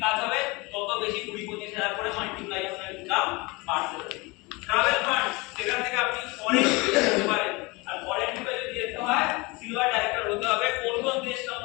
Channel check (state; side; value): quieter; right; 25.1 dB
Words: কাজ হবে, তত বেশি 20-25 হাজার করে মাল্টিপ্লাই আপনার ইনকাম বাড়তে থাকবে। ট্রাভেল ফান্ড সেখান থেকে আপনি ফরেন যেতে পারেন আর ফরেন ট্রিপে যদি যেতে হয় সিলভার ডাইরেক্টর হতে হবে। কোন কোন দেশ